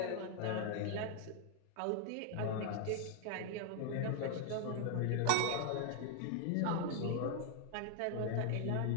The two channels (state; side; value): different; both; correlation 0.00